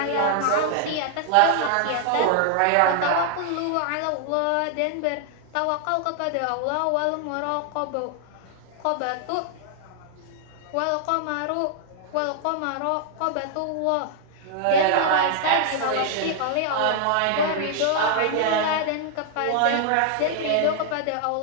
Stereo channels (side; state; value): both; different; correlation 0.00